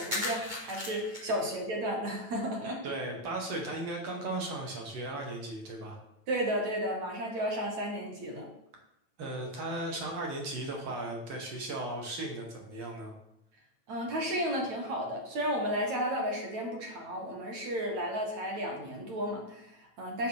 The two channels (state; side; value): late; left; 9.0 ms